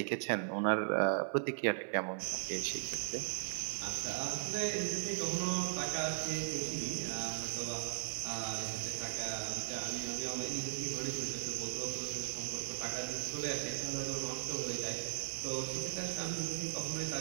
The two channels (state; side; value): silent; left; 53 dB below the other